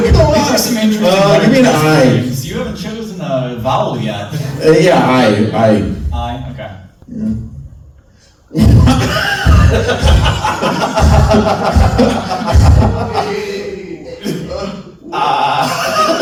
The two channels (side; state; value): both; identical; correlation 1.00